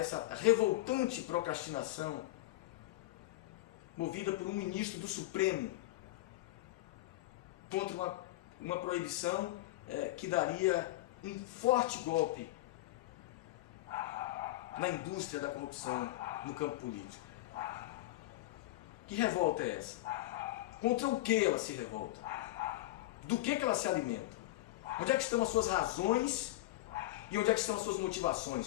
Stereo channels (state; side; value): quieter; right; 17.4 dB